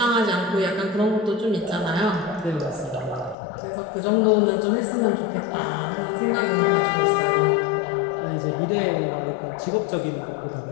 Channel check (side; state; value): right; drops out; at 3.4 s